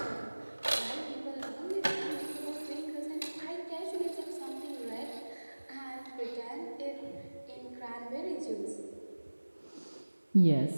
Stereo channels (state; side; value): inverted; both; correlation -1.00